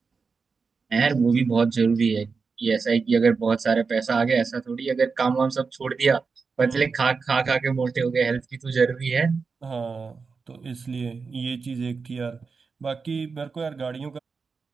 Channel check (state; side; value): quieter; left; 4.9 dB